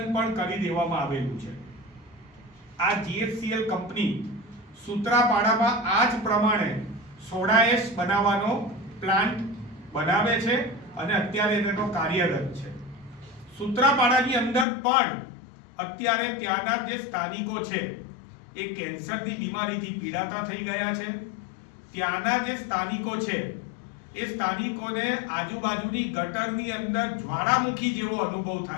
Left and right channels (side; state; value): right; drops out; at 14.7 s